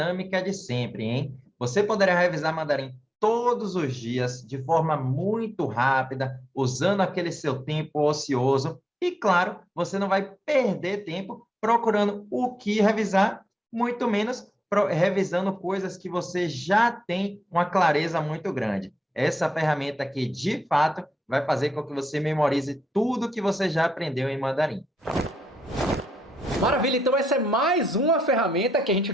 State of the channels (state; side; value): normal; both; correlation 0.85